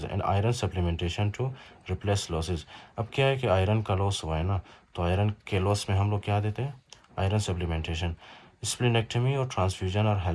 and iron supplementation to replace losses. अब क्या है कि आयरन का लॉस हुआ है ना, तो आयरन के लॉस में हम लोग क्या देते हैं, आयरन सप्लीमेंटेशन। स्प्लीनेक्टमी और transfusion are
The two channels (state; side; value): identical; both; correlation 1.00